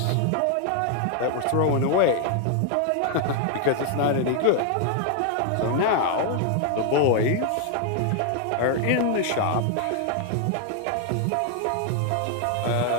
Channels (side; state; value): both; different; correlation 0.00